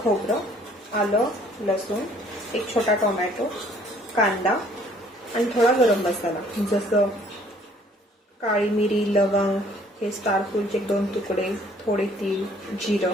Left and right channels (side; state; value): both; normal; correlation 0.59